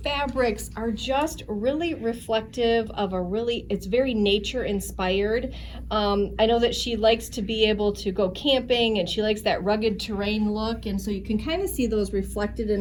fabrics are just really reflective of it's very nature inspired. I know that she likes to be able to go camping, and she likes that rugged terrain look, and so you can kind of see those reflected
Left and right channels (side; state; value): both; identical; correlation 1.00